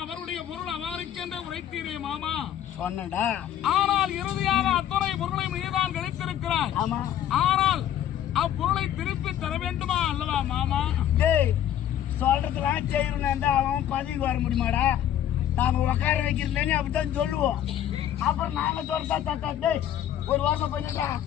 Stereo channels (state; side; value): quieter; right; 10.9 dB